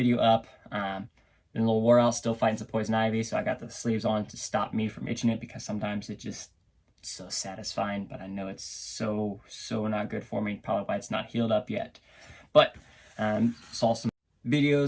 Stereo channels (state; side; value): identical; both; correlation 1.00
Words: up. Been a little wore out, still fighting some poison ivy, so I got the sleeves on to stop me from itching it, because sometimes it's just so satisfying, but I know it's so not good for me. Probably why it's not healed up yet. But saw some